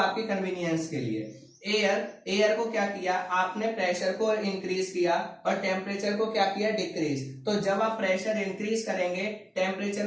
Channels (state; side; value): identical; both; correlation 1.00